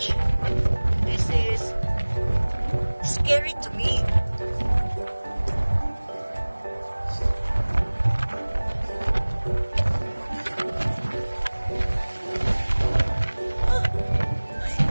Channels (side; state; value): both; inverted; correlation -1.00